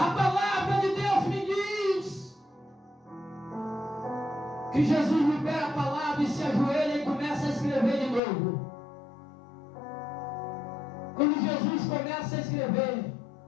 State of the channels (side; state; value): right; drops out; at 8.2 s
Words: palavra de Deus me diz que Jesus libera a palavra e se ajoelha e começa a escrever de novo. Quando Jesus começa a escrever,